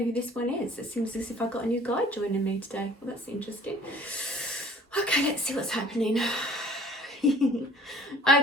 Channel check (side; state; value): both; normal; correlation 0.50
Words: who this one is. It seems as if I've got a new guide joining me today. Well, that's interesting. Okay, let's see what's happening.